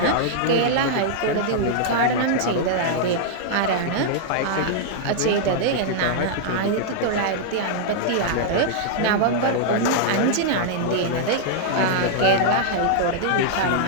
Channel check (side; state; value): both; different; correlation -0.01